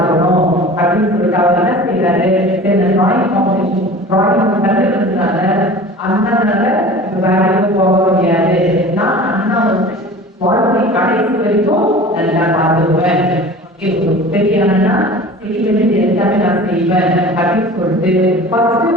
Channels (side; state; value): both; normal; correlation 0.40